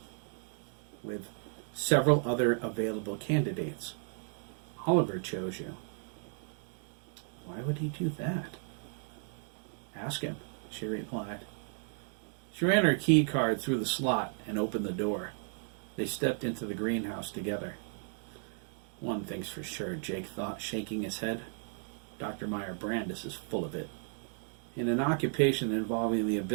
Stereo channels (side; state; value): left; silent; 55 dB below the other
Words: with several other available candidates. Oliver chose you." "Why would he do that?" "Ask him," she replied. She ran her key card through the slot and opened the door. They stepped into the greenhouse together. "One thing's for sure," Jake thought, shaking his head. "Dr. Meyer Brandis is full of it." In an occupation involving the